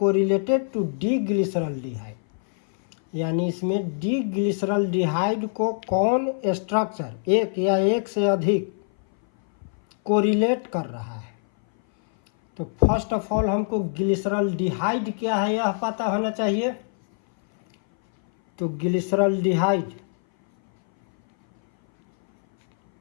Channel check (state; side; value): silent; right; 59 dB below the other